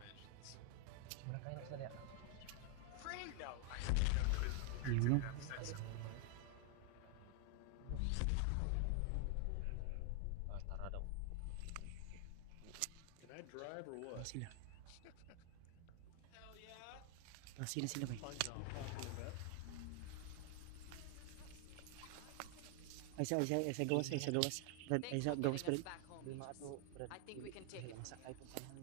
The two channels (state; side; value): different; both; correlation 0.00